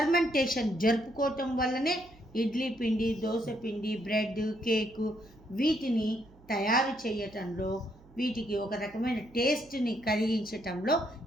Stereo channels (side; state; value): right; noise; hum, 25 dB below the sound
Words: జరుపుకోవటం వల్లనే ఇడ్లీ పిండి, దోశ పిండి, బ్రెడ్, కేకు వీటిని తయారు చేయటంలో, వీటికి ఒక రకమైన టేస్ట్ని కలిగించటంలో